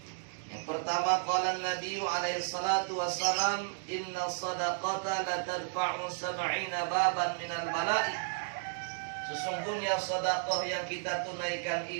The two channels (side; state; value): left; silent; digital silence